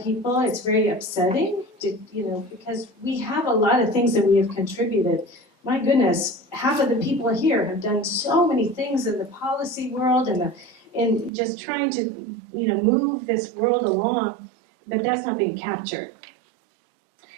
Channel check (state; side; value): drops out; left; at 11.3 s